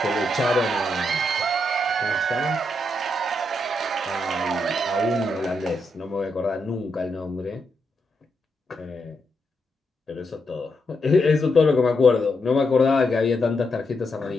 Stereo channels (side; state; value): both; normal; correlation 0.81